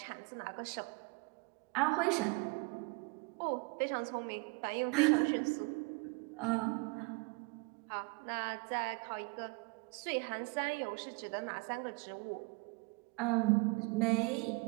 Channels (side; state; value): left; quieter; 29.0 dB